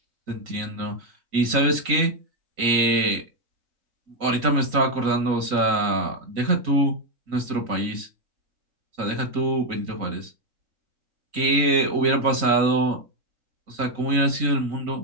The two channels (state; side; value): late; left; 3.9 ms